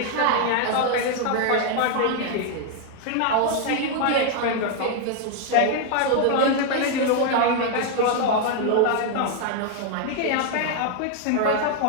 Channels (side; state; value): both; different; correlation 0.00